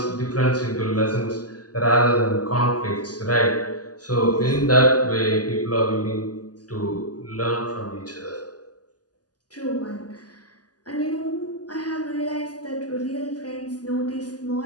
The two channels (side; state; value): right; late; 0.68 ms